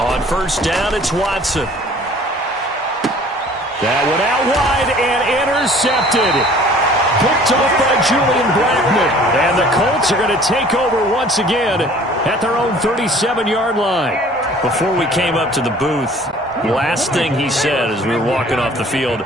1st down, it's Watson. That one out wide and intercepted. Picked off by Julian Blackman. And the Colts are going to take over once again at their own 37-yard line. Before we came up to the booth, last thing he said as we were walking off the field,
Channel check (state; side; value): normal; both; correlation 0.51